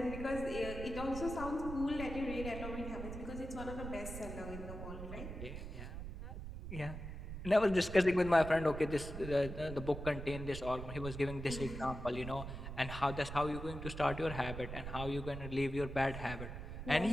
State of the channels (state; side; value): noise; right; rumble, 8 dB below the sound